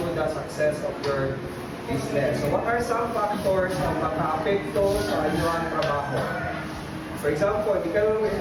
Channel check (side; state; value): both; identical; correlation 1.00